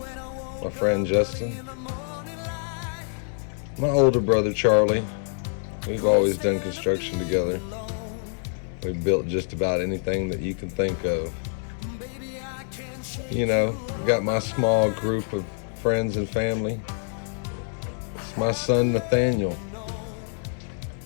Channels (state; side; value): silent; right; 61 dB below the other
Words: my friend Justin. My older brother Charlie. We've always done construction together. We've built just about anything that you can think of. You know, got my small group of friends and family. It's my son Nathaniel,